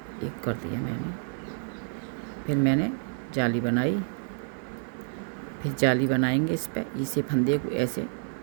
1 कर दिया मैंने। फिर मैंने जाली बनाई, फिर जाली बनाएंगे इस पे। इसे फंदे को ऐसे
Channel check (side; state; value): left; silent; 59 dB below the other